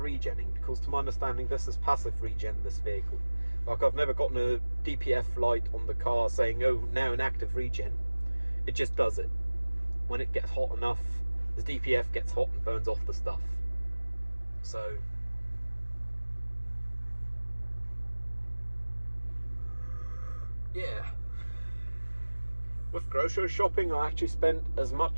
because to my understanding, this is passive regen, this vehicle. Like, I've never gotten a DPF light on the car saying, oh, now an active regen. It just does it. When it gets hot enough, the DPF gets hot and burns off the stuff. So, yeah. With grocery shopping, I actually spent as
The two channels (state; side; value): inverted; both; correlation -1.00